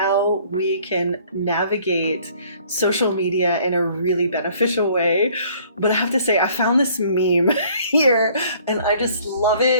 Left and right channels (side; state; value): both; inverted; correlation -0.57